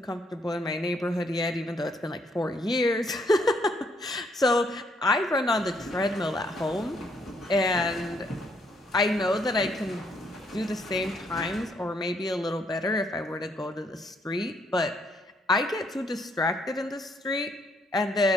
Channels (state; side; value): normal; both; correlation 0.71